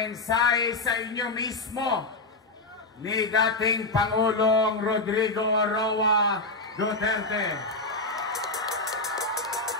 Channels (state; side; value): quieter; right; 3.1 dB